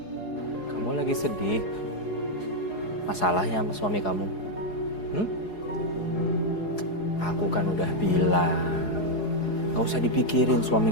Kamu lagi sedih? Masalahnya sama suami kamu? Hmm? Aku kan udah bilang, gak usah dipikirin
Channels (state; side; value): late; right; 4.8 ms